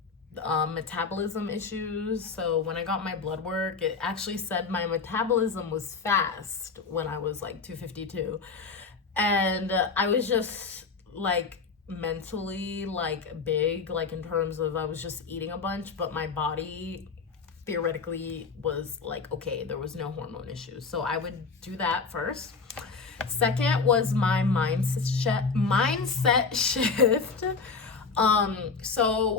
metabolism issues. So when I got my blood work, it actually said my metabolism was fast when I was like 252. And I was just like mentally like big, like in terms of I was just eating a bunch, but my body theoretically was like okay, there was no hormone issues. So I would do that first. Second was my mindset shift.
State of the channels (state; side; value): quieter; right; 4.8 dB